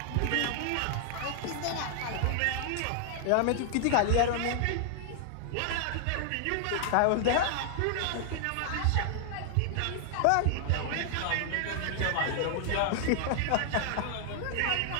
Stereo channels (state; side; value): different; both; correlation 0.00